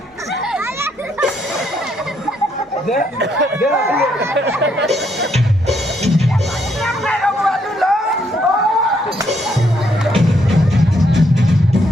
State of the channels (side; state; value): both; normal; correlation 0.73